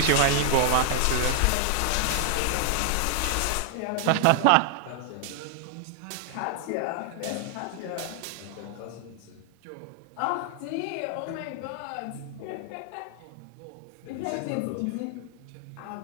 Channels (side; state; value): both; different; correlation 0.00